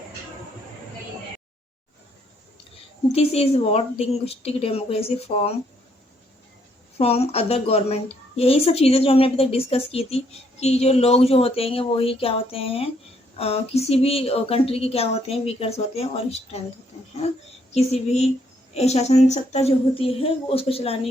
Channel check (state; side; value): normal; both; correlation 0.71